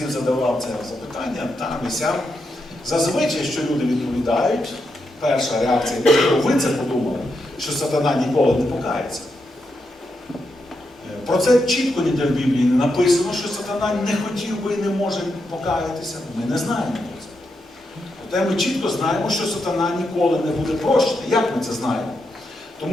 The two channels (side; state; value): both; normal; correlation 0.84